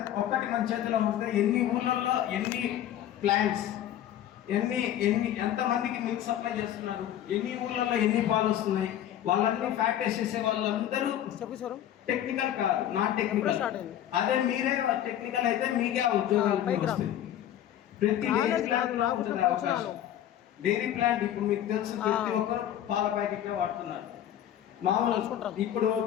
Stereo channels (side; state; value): right; quieter; 11.3 dB